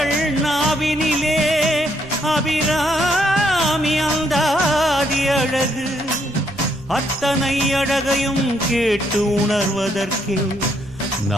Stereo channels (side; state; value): right; noise; rumble, 21 dB below the sound